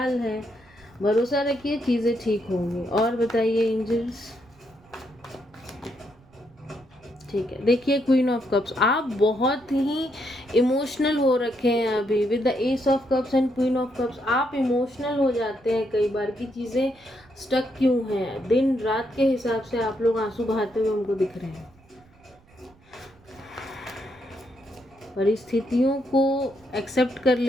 है। भरोसा रखिए, चीज़ें ठीक होंगी। और बताइए एंजल्स। ठीक है, देखिए क्वीन ऑफ कप्स, आप बहुत ही इमोशनल हो रखे हैं अभी। With the S of cups and queen of cups आप इमोशनल हो जाते हैं कई बार की चीज़ें स्टक क्यों हैं। दिन रात के हिसाब से आप लोग आंसू बहाते हुए हमको दिख रहे हैं। परिस्थितियों को एक्सेप्ट कर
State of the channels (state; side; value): noise; right; rumble, 29 dB below the sound